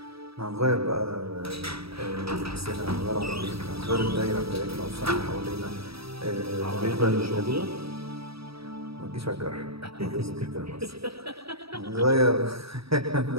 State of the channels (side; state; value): left; late; 0.77 ms